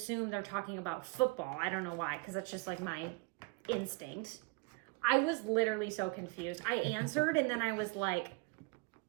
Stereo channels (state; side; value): quieter; left; 29.1 dB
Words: they're talking about football. I don't know why, because that's just like my instinct. I was literally so confused. I answered and then I was like,